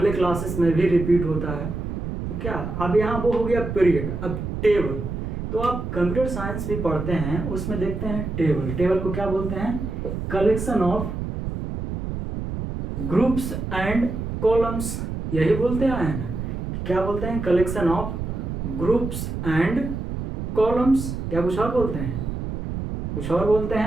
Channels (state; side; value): noise; right; rumble, 5 dB below the sound